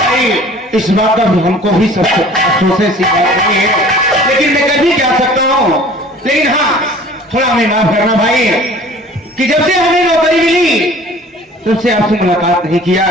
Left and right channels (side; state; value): both; normal; correlation 0.48